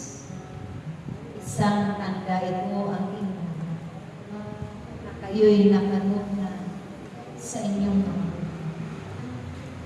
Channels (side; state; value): both; identical; correlation 1.00